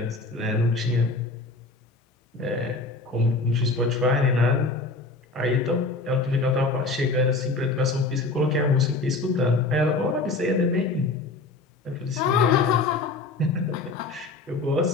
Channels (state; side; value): quieter; right; 3.5 dB